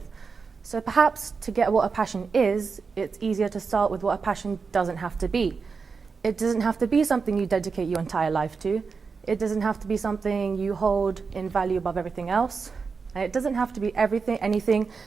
So perhaps to get what a passion is, it's easier to start with what a passion doesn't have to be. It doesn't have to be something you dedicate your entire life to. It doesn't have to be something you hold in value above everything else. And it doesn't have to be anything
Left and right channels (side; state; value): left; quieter; 5.0 dB